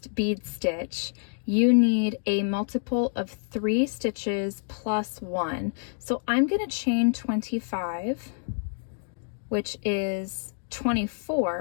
bead stitch, you need a multiple of 3 stitches plus 1. So I'm going to chain 25, which is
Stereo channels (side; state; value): right; silent; digital silence